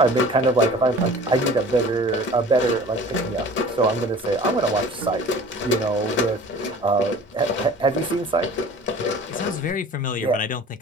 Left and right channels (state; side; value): normal; both; correlation 0.44